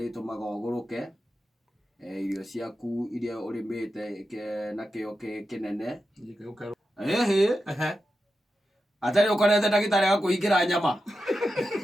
uguruke irio ciaku iria urimite na kio kinene atari ukorete ndagitari ga kuhingira nyama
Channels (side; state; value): both; normal; correlation 0.90